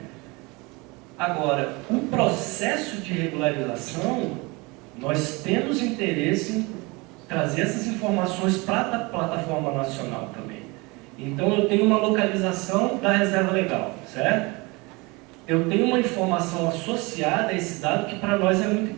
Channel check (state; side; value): quieter; left; 25.9 dB